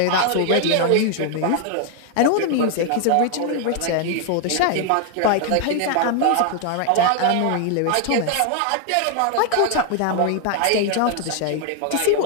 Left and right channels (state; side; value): different; both; correlation 0.00